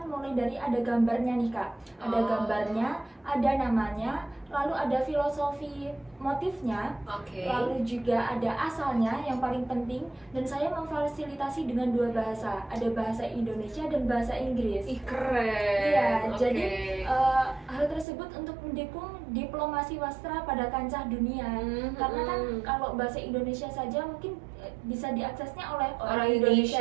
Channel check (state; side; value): drops out; left; at 18.1 s